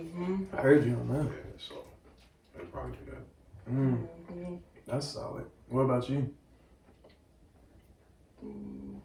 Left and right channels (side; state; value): both; identical; correlation 1.00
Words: I heard you on that. Yeah, so they probably do that. That's solid. What about you?